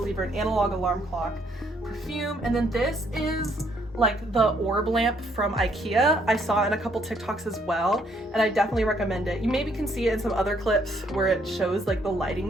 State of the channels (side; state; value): both; normal; correlation 0.68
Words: in analog alarm clock. Perfume, and then this is like the orb lamp from IKEA. I saw it in a couple TikToks as well, and I definitely recommend it. You maybe can see it in some other clips where it shows like the lighting